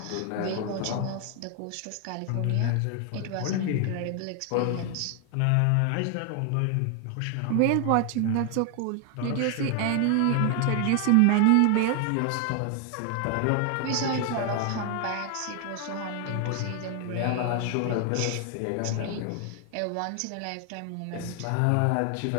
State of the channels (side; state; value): both; different; correlation 0.00